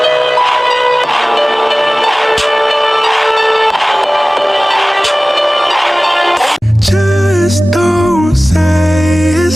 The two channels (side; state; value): both; normal; correlation 0.98